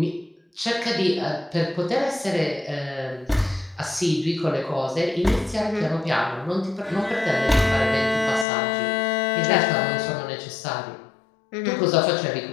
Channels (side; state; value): right; drops out; at 8.5 s